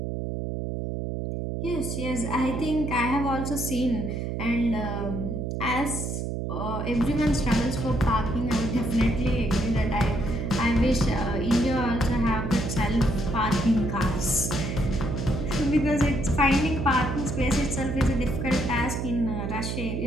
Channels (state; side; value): noise; right; hum, 3 dB below the sound